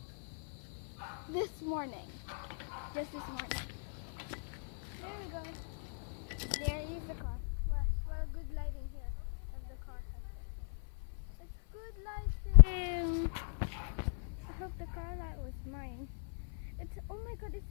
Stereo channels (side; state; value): right; silent; 52 dB below the other